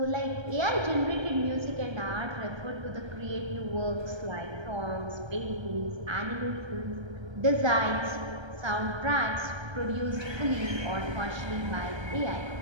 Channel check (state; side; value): late; left; 1.3 ms